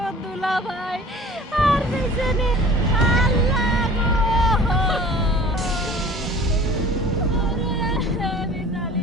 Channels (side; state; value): both; normal; correlation 0.45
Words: দুলা ভাই আর বেঁচে নেই। আল্লাহ গো! ওরে